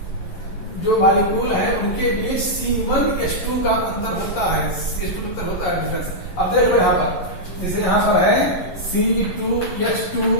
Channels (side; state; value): right; late; 11 ms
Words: जो मॉलिक्यूल है उनके बीच C1H2 का अंतर होता है, CH2 अंतर होता है, डिफरेंस। अब देख लो यहां पर, जैसे यहां पर है C2H2